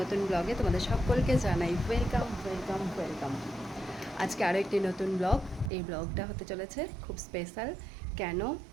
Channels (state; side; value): drops out; left; at 5.7 s